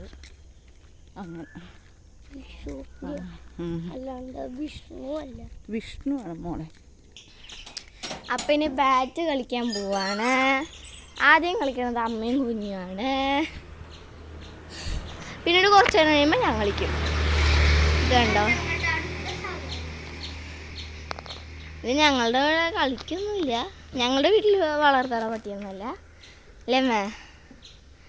അങ്ങനെ. വിഷ്ണു ആണ് മോളെ. അപ്പം ഇനി ബാറ്റ് കളിക്കാൻ പോവാണ്. ആദ്യം കളിക്കുന്നത് അമ്മയും കുഞ്ഞുമാണ്. പിന്നീട് കുറച്ച് നേരം കഴിയുമ്പോൾ ഞാൻ കളിക്കും. ഇത് കണ്ടോ, ഇത് ഞങ്ങളുടെ ഇവിടെ കളിക്കൊന്നുമില്ല. ഞങ്ങളുടെ വീട്ടിൽ വളർത്താറ പട്ടിയൊന്നുമല്ല അല്ലേ മേ?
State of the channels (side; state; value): both; identical; correlation 1.00